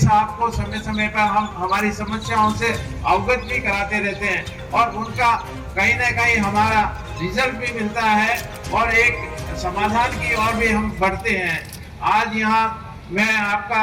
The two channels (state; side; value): identical; both; correlation 1.00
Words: को समय समय पर हम हमारी समस्याओं से अवगत भी कराते रहते हैं और उनका कहीं ना कहीं हमारा रिजल्ट भी मिलता है और एक समाधान की ओर भी हम बढ़ते हैं। आज यहाँ मैं